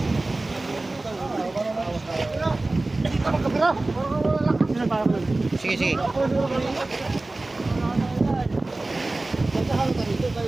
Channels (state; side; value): quieter; left; 3.0 dB